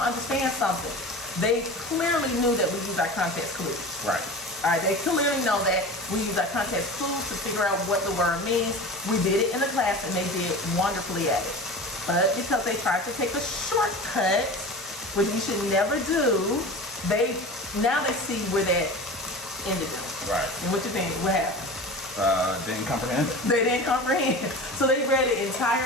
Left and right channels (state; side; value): normal; both; correlation 0.33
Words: understand something? They clearly knew that we use our context clues. Right. All right, they clearly know that we use our context clues to figure out what the word means. We did it in the class and they did wonderfully at it. But because they tried to take a shortcut, which we should never do, now they see where that ended them. Right. And what you think? What happened? Didn't comprehend it. They didn't comprehend. So they read an